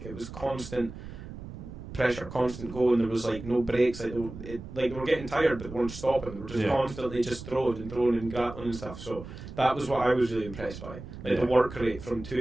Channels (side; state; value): right; noise; rumble, 12 dB below the sound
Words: it was constant pressure, constant going. There was like no breaks. Like they were getting tired, but they weren't stopping. They were just constantly just throwing and grappling and stuff. So that was what I was really impressed by. Like the work rate from